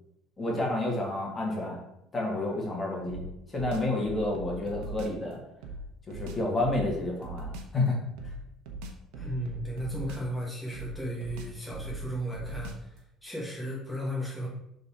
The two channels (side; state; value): both; normal; correlation 0.55